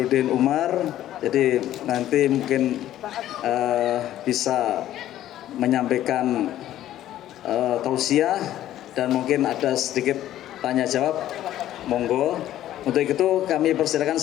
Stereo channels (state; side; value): quieter; right; 12.8 dB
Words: Umar. Jadi nanti mungkin bisa menyampaikan tausiah dan mungkin ada sedikit tanya jawab. Monggo. Untuk itu kami persilakan